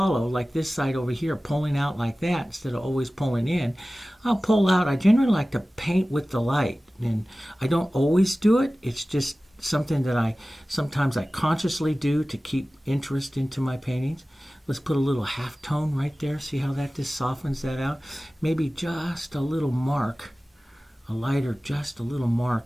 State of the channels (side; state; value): both; normal; correlation 0.97